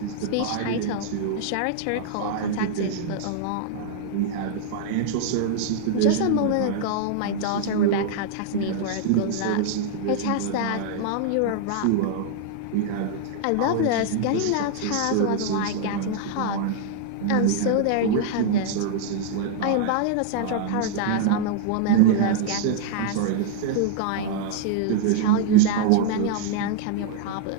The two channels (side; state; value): both; different; correlation -0.01